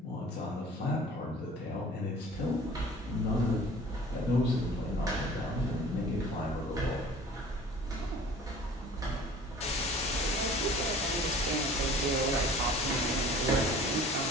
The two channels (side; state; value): both; normal; correlation 0.46